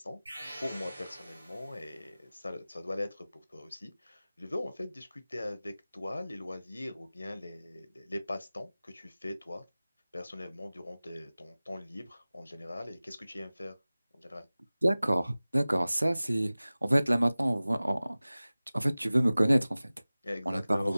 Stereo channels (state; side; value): inverted; both; correlation -0.98